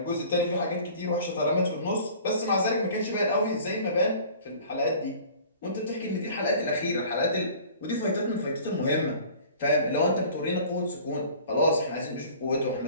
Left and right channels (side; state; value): both; inverted; correlation -0.47